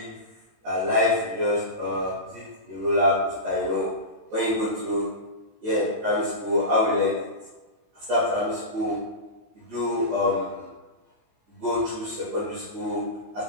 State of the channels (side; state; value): left; late; 18 ms